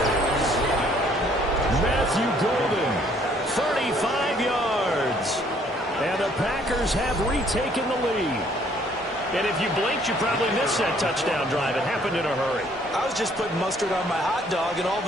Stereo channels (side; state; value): both; normal; correlation 0.62